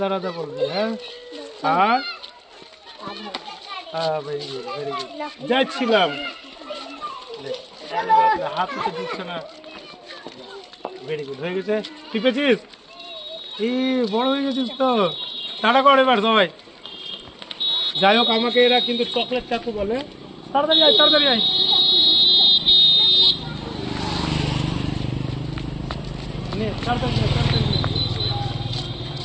রাধা বলবি হ্যাঁ আর ভেরি গুড যাচ্ছিলাম হাত তো দিচ্ছে না ভেরি গুড হয়ে গেছে তুই পেয়েছিস এই বড় হয়ে গেছিস তো টাটা কর এবার সবাই যাই হোক আমাকে এরা কিন্তু চকলেট চাকু বলে তাড়াতাড়ি আয় নে তাড়াতাড়ি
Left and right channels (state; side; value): identical; both; correlation 1.00